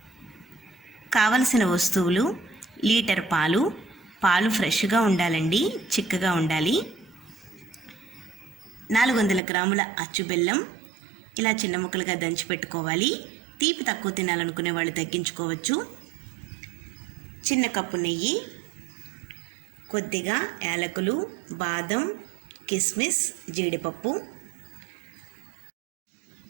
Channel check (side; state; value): left; drops out; at 9.4 s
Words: కావలసిన వస్తువులు: లీటర్ పాలు ఫ్రెష్గా ఉండాలండి, చిక్కగా ఉండాలి. 400 గ్రాముల అచ్చు బెల్లం ఇలా చిన్న ముక్కలుగా దంచి పెట్టుకోవాలి. తీపి తక్కువ తినాలనుకునే వాళ్ళు తగ్గించుకోవచ్చు. చిన్న కప్పు నెయ్యి, కొద్దిగా యాలకులు, బాదం, కిస్మిస్, జీడిపప్పు,